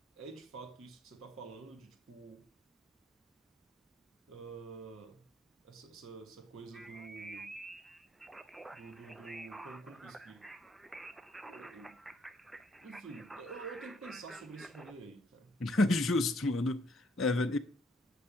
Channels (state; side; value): normal; both; correlation 0.68